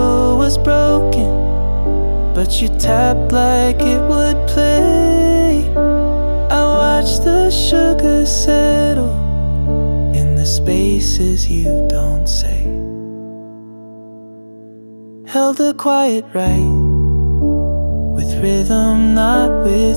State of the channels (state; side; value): inverted; both; correlation -1.00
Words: was broken, but you tapped like it would play. I watched the sugar settle in the spaces you don't say. Held a quiet right, with rhythm, not